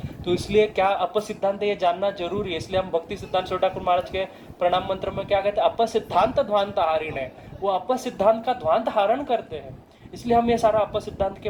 तो इसलिए क्या अपसिद्धांत ये जानना जरूरी है। इसलिए हम भक्ति सिद्धांत छोटा ठाकुर महाराज के प्रणाम मंत्र में क्या कहते हैं, अपसिद्धांत ध्वांत हारिण है। वो अपसिद्धांत का ध्वांत हारण करते हैं। इसलिए हम ये सारा अपसिद्धांत के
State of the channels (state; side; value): identical; both; correlation 1.00